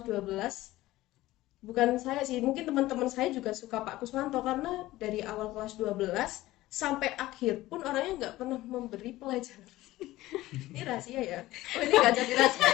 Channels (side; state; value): right; quieter; 16.9 dB